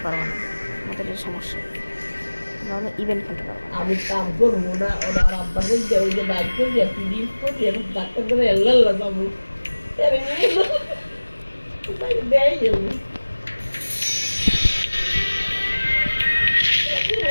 পারবে না, আমাদের এই সমস্যা। তোমরা ইভেন্ট খেলতে পারবে না। আমি কাম করবো না, ওরা আব্বা বলছে ওই যে বাইক করবি, আপনি ডিস করবি, এখন ডাক্তার করে এল্লাল্লা যাবো। দেয় যাবো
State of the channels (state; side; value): inverted; both; correlation -1.00